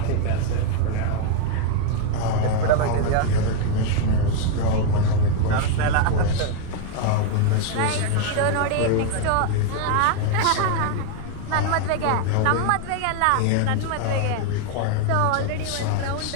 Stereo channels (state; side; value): different; both; correlation 0.01